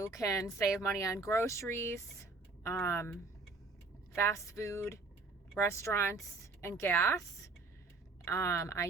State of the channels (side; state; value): left; quieter; 3.8 dB